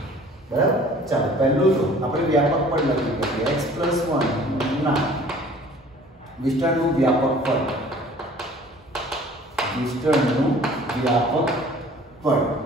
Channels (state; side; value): normal; both; correlation 0.50